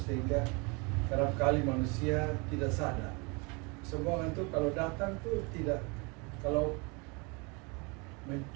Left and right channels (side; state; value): left; quieter; 30.0 dB